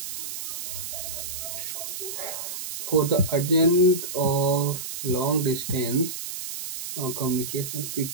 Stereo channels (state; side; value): noise; right; hiss, 7 dB below the sound